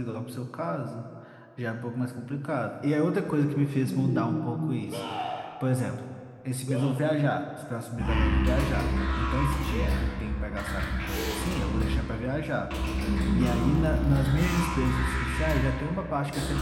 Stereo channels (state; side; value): identical; both; correlation 1.00